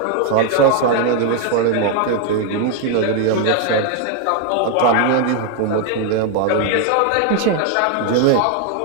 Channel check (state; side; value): different; both; correlation 0.01